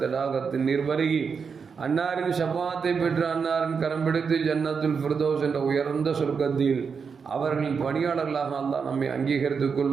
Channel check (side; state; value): left; quieter; 5.8 dB